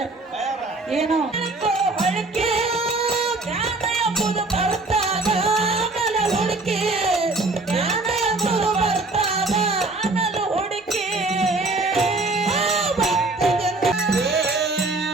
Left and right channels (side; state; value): left; quieter; 3.2 dB